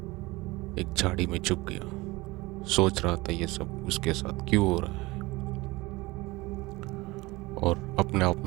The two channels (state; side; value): quieter; left; 21.6 dB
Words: एक झाड़ी में छुप गया। सोच रहा था ये सब उसके साथ क्यों हो रहा है, और अपने आप